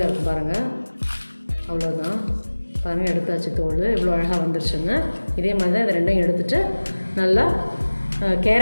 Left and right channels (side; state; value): both; inverted; correlation -1.00